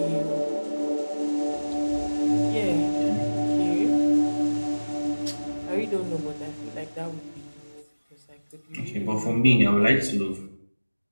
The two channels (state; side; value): inverted; both; correlation -1.00